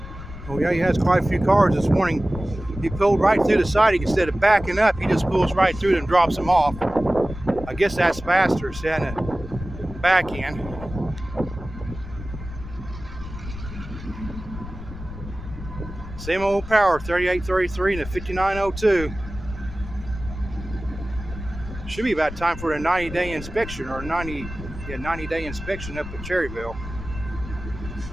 Oh yeah, he has quite a few cars this morning. He pulled right through the siding instead of backing up. He just pulls right through and drops them off. I guess that's faster than the back end. Same old power, 3833 and a 5902. Should be about time for a 90-day inspection or 90-day inspection up at Cherryville.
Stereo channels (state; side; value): noise; left; rumble, 11 dB below the sound